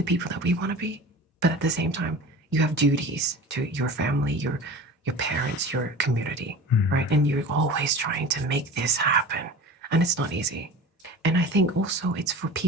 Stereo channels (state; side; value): normal; both; correlation 0.37